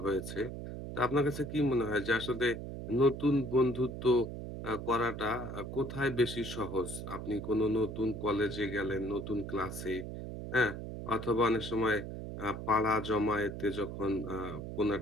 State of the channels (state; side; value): noise; right; hum, 7 dB below the sound